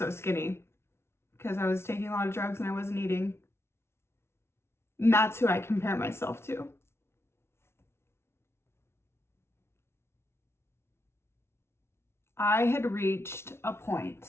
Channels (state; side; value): late; right; 0.12 ms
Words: skinny, because I was taking a lot of drugs and I wasn't eating. And that's who I compare myself to. I had reached a